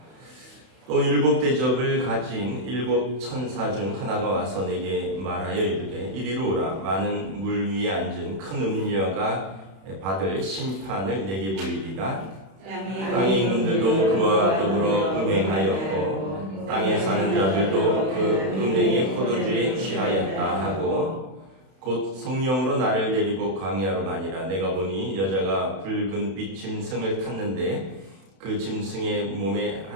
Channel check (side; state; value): left; late; 31 ms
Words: 또 일곱 대접을 가진 일곱 천사 중 하나가 와서 내게 말하여 이르되 이리로 오라. 많은 물 위에 앉은 큰 음녀가 받을 심판을 내게 보이리라. 땅의 임금들도 그와 더불어 음행하였고 땅에 사는 자들도 그 음행의 포도주에 취하였다 하고 곧 성령으로 나를 데리고 광야로 가니라. 내가 보니 여자가 붉은 빛 짐승을 탔는데 그 짐승의 몸에